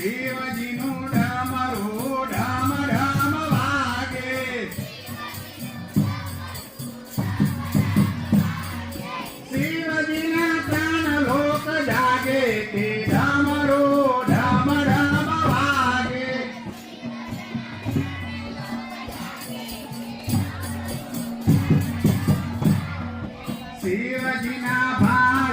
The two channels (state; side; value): identical; both; correlation 1.00